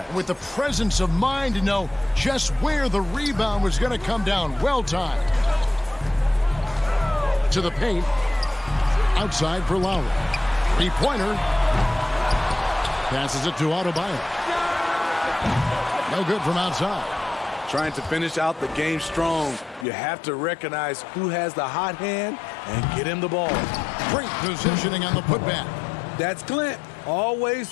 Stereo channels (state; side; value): drops out; right; at 19.9 s